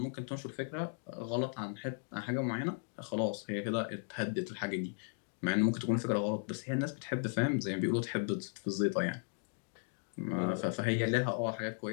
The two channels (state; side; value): silent; right; 54 dB below the other